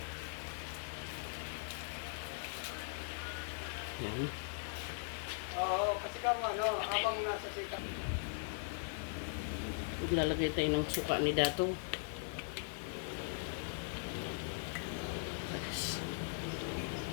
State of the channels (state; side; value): silent; right; 51 dB below the other